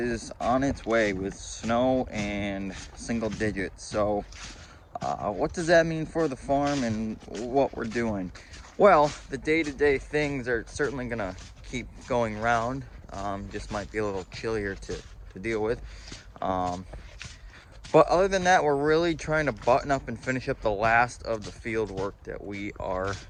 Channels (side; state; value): both; identical; correlation 1.00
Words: on its way with snow and single digits. So what does that mean for the farm and what we're doing? Well, the day-to-day things are certainly gonna keep going round. Just might be a little chillier to deal with. But other than that, we're really trying to button up and finish up the last of the field work that we are